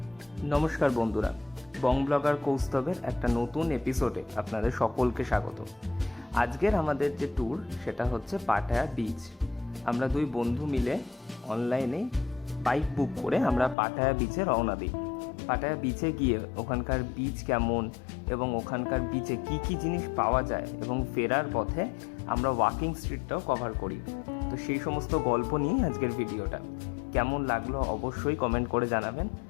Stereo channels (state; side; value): drops out; right; at 13.8 s